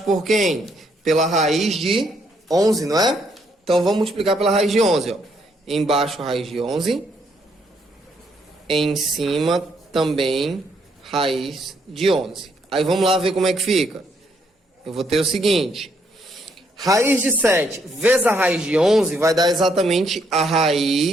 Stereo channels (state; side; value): normal; both; correlation 0.72